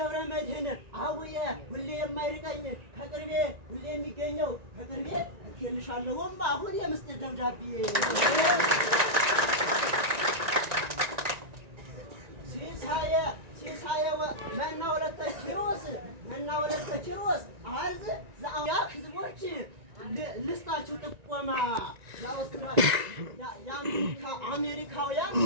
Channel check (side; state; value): left; late; 1.9 ms